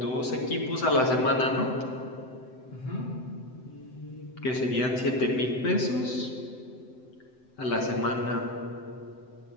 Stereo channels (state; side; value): late; right; 7.9 ms